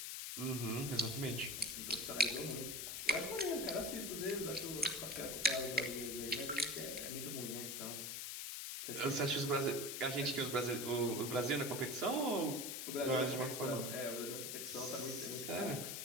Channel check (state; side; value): noise; left; hiss, 4 dB below the sound